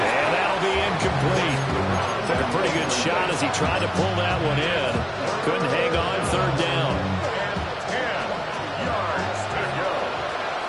that'll be incomplete. Took a pretty good shot as he tried to pull that one in. Couldn't hang on, 3rd down.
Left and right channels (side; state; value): both; identical; correlation 1.00